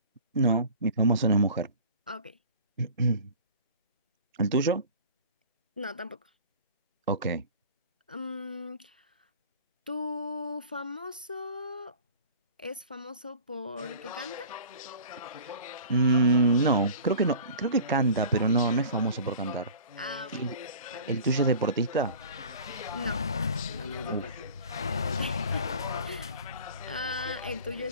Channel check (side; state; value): both; inverted; correlation -0.41